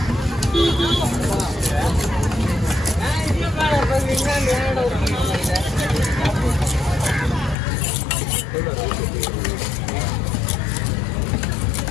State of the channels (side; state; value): right; drops out; at 7.6 s